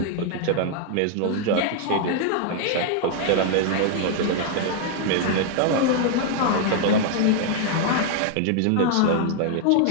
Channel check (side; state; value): both; different; correlation 0.00